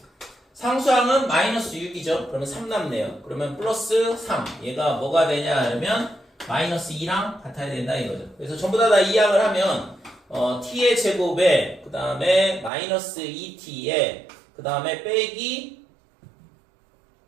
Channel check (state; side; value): drops out; left; at 12.7 s